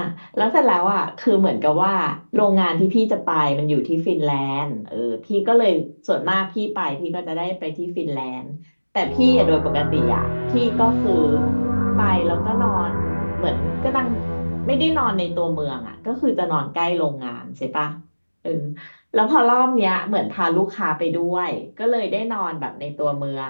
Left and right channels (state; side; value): inverted; both; correlation -1.00